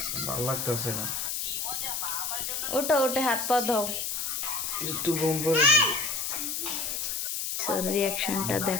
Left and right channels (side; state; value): left; noise; hiss, 2 dB below the sound